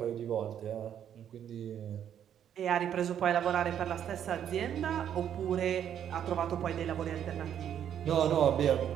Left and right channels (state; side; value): quieter; left; 9.5 dB